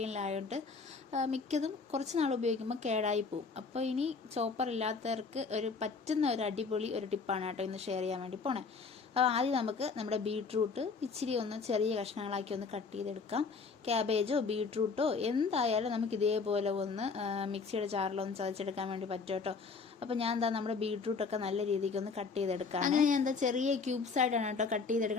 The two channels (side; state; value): right; quieter; 4.8 dB